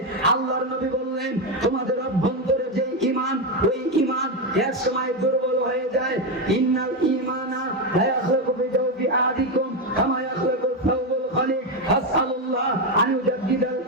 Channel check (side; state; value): both; normal; correlation 0.08